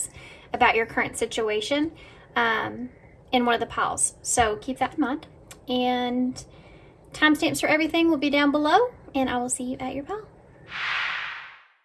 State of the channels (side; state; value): both; identical; correlation 1.00